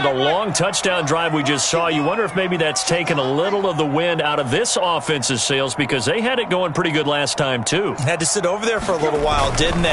the long touchdown drive we just saw, you wonder if maybe that's taken a little of the wind out of this offense's sails because they had it going pretty good last time too. Had to sit over there for a little while, didn't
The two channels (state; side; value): identical; both; correlation 1.00